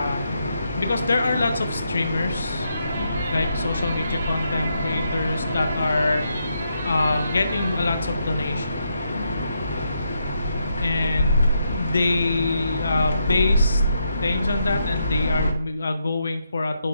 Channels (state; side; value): inverted; both; correlation -0.80